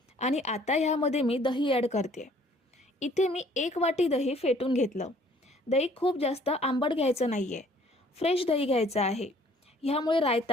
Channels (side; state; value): both; normal; correlation 0.58